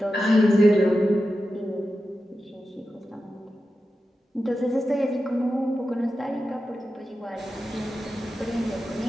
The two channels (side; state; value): both; normal; correlation 0.91